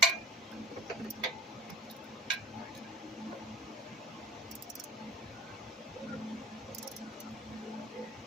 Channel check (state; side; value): normal; both; correlation 0.41